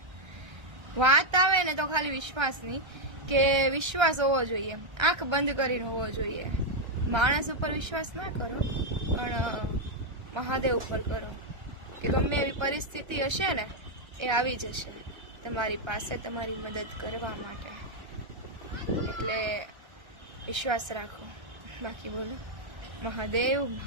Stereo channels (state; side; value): late; left; 1.3 ms